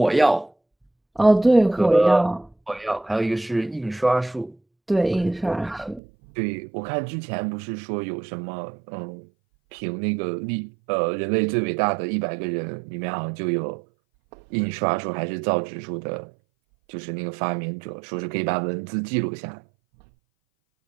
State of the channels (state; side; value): drops out; left; at 6.0 s